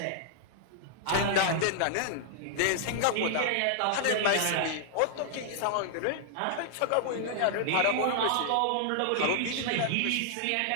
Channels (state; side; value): different; both; correlation -0.01